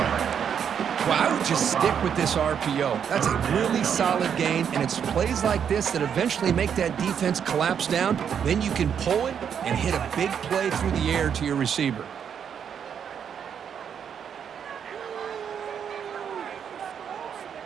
Well, I would just stick with this RPO. That's a really solid gain, and it's plays like this that eventually make that defense collapse down. Then you can pull it and hit a big play through the air to your receiver.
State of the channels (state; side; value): quieter; left; 7.9 dB